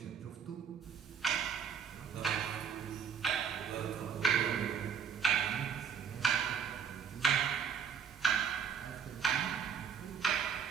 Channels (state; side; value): quieter; left; 7.1 dB